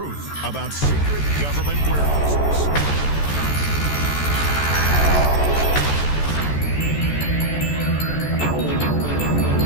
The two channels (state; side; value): late; right; 14 ms